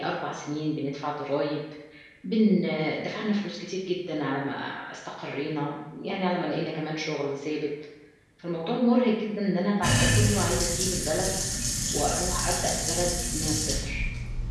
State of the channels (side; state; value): both; identical; correlation 1.00